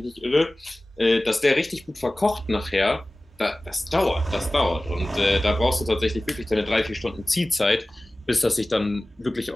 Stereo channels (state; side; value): normal; both; correlation 0.97